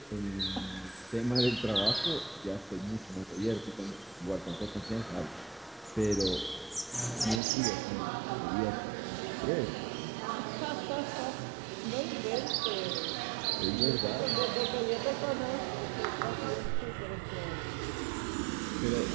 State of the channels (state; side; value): drops out; left; at 7.4 s